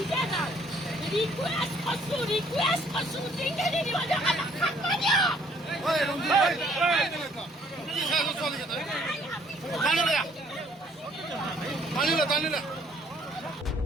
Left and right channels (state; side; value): normal; both; correlation 0.62